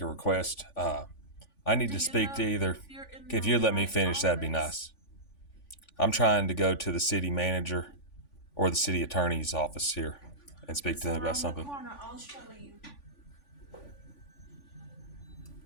request. I need to speak to either. If you'd let me finish, that'd be nice. I'm trying to go to the city manager or the city attorney's office here and speak to them about something. Corner, I'll show you.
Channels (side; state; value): right; late; 3.5 ms